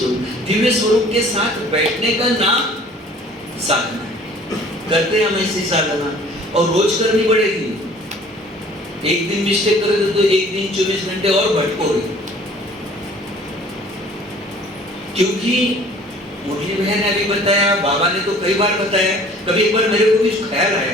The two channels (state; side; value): normal; both; correlation 0.51